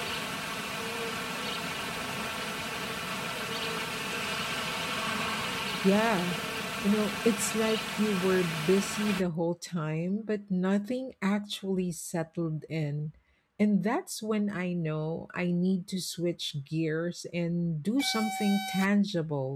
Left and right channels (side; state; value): both; identical; correlation 1.00